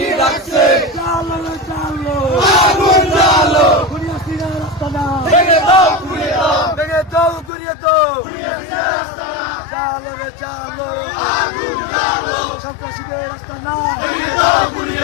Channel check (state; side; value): drops out; right; at 7.5 s